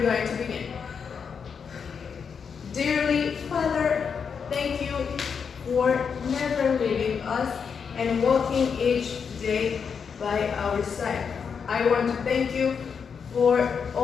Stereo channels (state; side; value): quieter; right; 6.4 dB